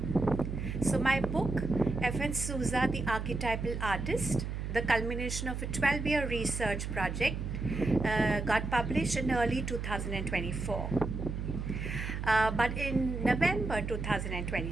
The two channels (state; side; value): noise; right; hum, 4 dB below the sound